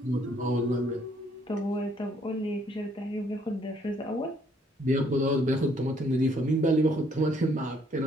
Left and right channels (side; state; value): both; normal; correlation 0.66